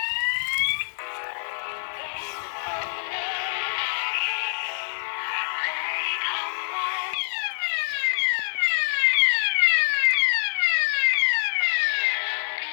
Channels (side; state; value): right; silent; 58 dB below the other